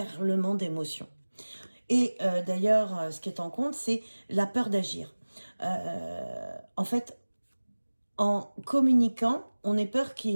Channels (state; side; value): inverted; both; correlation -1.00